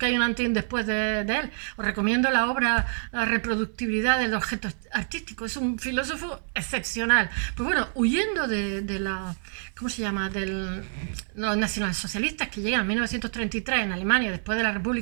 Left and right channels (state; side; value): silent; left; digital silence